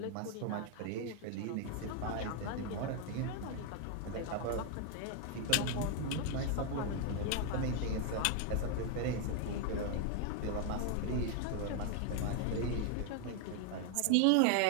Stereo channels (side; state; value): both; different; correlation 0.00